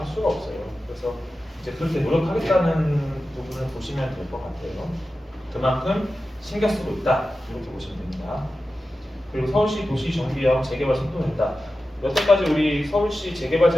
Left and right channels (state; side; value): normal; both; correlation 0.93